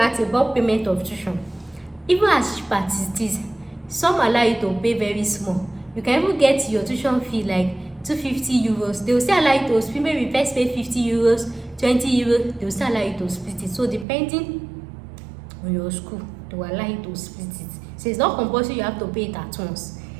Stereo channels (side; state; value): left; drops out; at 14.1 s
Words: about payment of tuition. Even as cheap as it is, some allow you to pay very small. You can even get your tuition fee like 250 euros. They will still allow you to split. Maybe first pay 50 euros, 20 euros. They will still allow you to split it. So depending on your school, they will allow you to split it. So it's not compulsory you have to pay it at once.